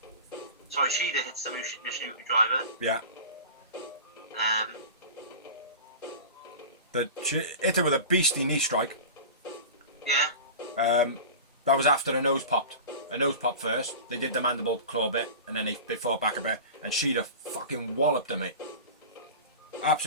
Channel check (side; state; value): both; inverted; correlation -0.33